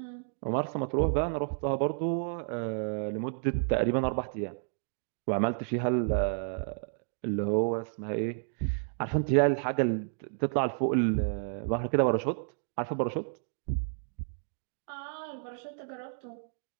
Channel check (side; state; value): left; silent; digital silence